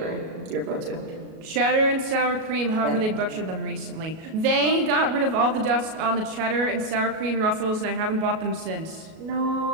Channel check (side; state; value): left; late; 37 ms